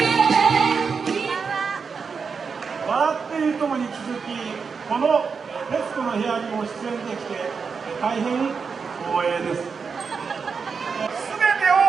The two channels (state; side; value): quieter; left; 5.5 dB